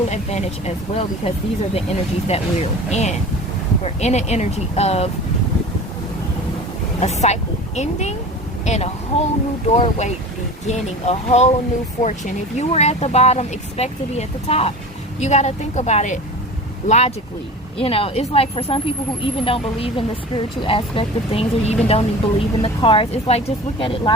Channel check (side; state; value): both; normal; correlation 0.35